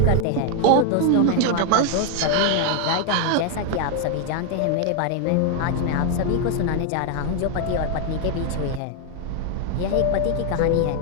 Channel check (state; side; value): different; both; correlation 0.00